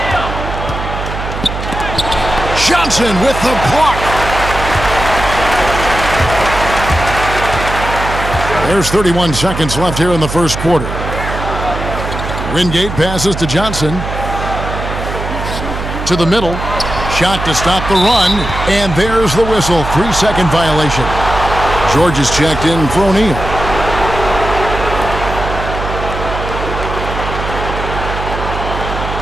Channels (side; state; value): right; noise; hum, 6 dB below the sound